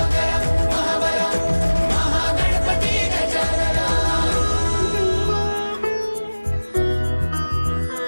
महाबल महागणपती गजानना।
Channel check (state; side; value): inverted; both; correlation -1.00